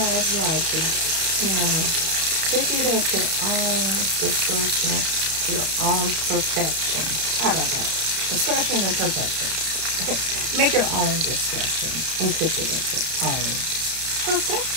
like it, pick it at your own discretion, your own perfection. How about that? Discretion and perfection. Make your own discretion and cook it at your own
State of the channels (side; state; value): left; late; 32 ms